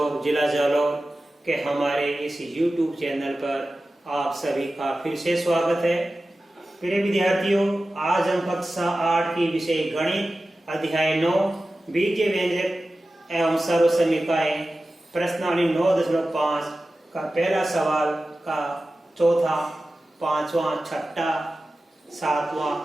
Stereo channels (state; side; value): normal; both; correlation 0.95